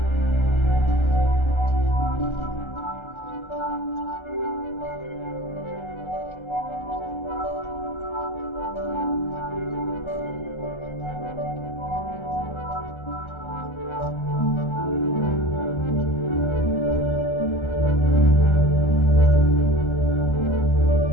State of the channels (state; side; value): late; right; 1.3 ms